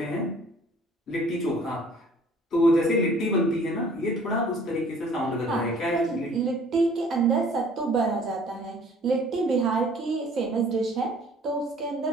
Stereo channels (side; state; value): both; normal; correlation 0.54